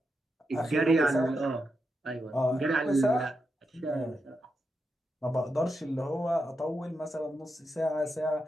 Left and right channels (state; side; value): normal; both; correlation 0.86